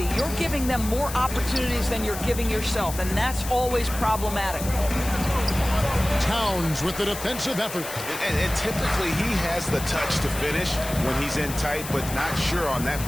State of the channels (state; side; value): noise; left; hiss, 10 dB below the sound